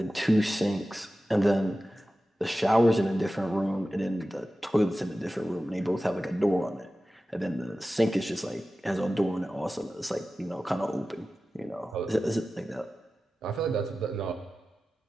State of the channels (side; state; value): both; normal; correlation 0.95